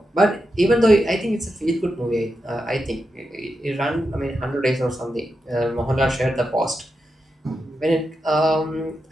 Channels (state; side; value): normal; both; correlation 0.88